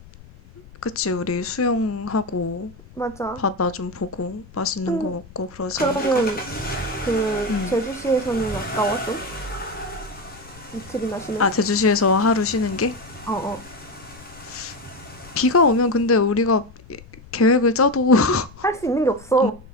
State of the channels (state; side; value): noise; left; rumble, 22 dB below the sound